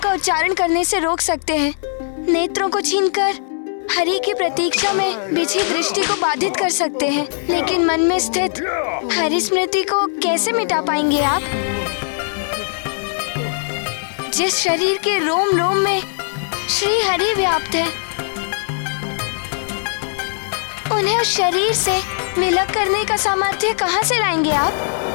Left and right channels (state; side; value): silent; right; digital silence